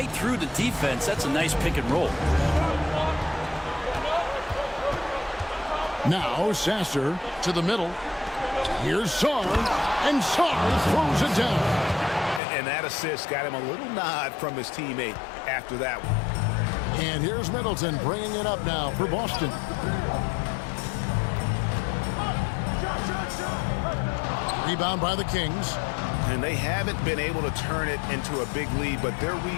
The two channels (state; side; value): drops out; right; at 12.4 s